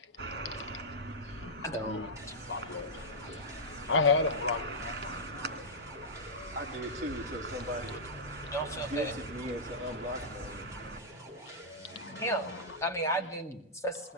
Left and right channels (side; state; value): both; normal; correlation -0.09